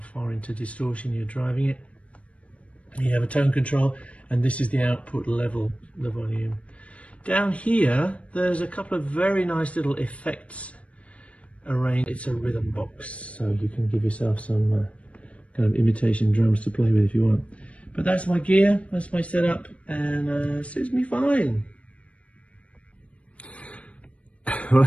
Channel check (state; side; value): late; right; 0.063 ms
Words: into distortion you're driving it. You have a tone control, and this is the output level, the volume. Down here there's a couple of very nice little effects arranged. It's a rhythm box, so you can give yourself some kind of imitation drums to play with if you want. But that's my gear, that's my setup, and suits me fine. Well, I